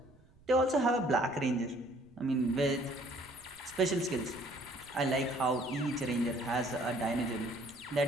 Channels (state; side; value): noise; right; rumble, 27 dB below the sound